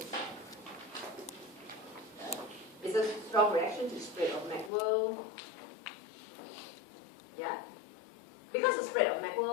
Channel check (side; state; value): right; drops out; at 4.7 s